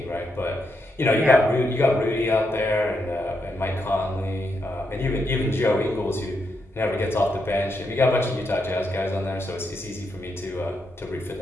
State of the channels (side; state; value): both; normal; correlation 0.81